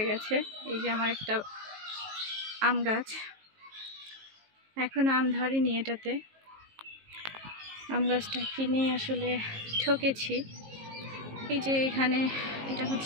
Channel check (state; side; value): late; left; 19 ms